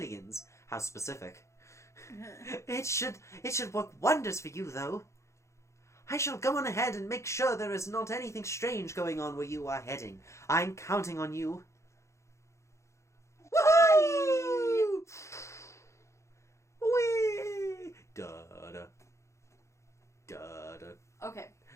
How specific. It should work wonders for you, though. I shall go on ahead and make sure there is not anything strange going on where you are heading. I'm counting on you. Woohoo! Whee! Da-da. Da-da. Okay.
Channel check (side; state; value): right; late; 0.14 ms